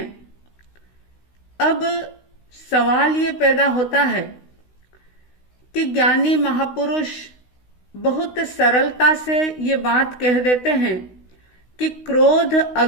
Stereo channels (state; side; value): late; right; 16 ms